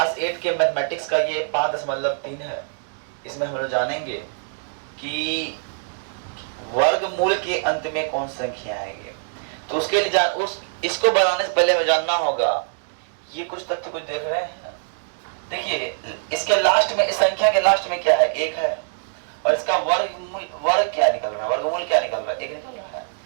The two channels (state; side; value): silent; left; 63 dB below the other